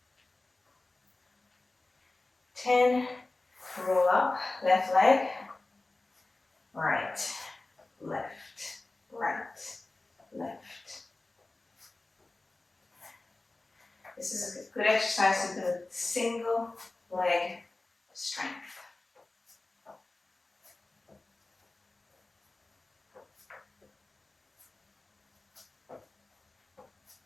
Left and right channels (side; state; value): right; quieter; 3.1 dB